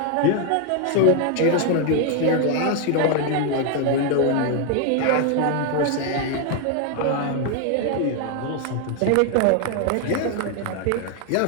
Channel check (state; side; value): different; both; correlation 0.01